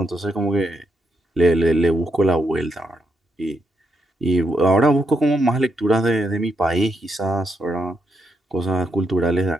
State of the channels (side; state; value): both; normal; correlation 0.79